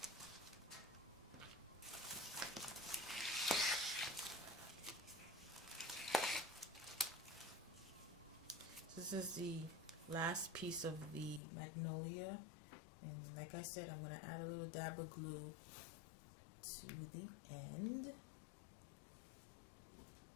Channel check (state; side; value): drops out; right; at 11.4 s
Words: This is the last piece of the magnolia, and like I said, I'm going to add a little dab of glue to the end.